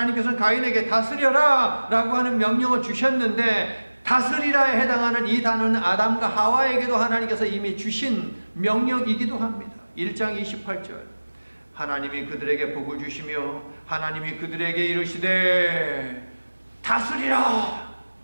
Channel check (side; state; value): both; inverted; correlation -1.00